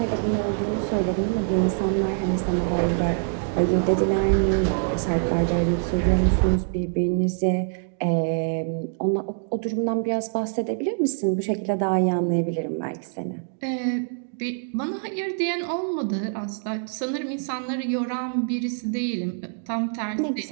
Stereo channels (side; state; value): left; silent; digital silence